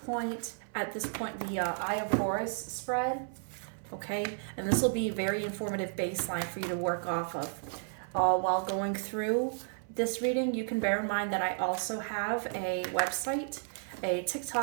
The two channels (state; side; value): silent; left; 55 dB below the other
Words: at this point, the Eye of Horus spread, okay? And this will be a very informative baseline for you to work off of. While going through this reading, you can bear in mind that I also have a website, a